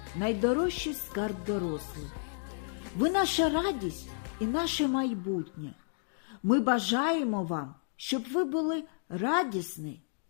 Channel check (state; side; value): silent; right; digital silence